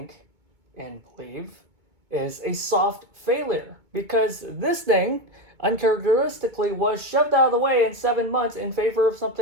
and believe is a soft failure. Because this thing uncharacteristically was shoved out of the way in 7 months in favor of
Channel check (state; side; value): late; left; 2.2 ms